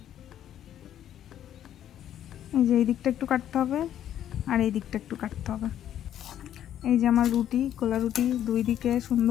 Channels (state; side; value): quieter; right; 10.8 dB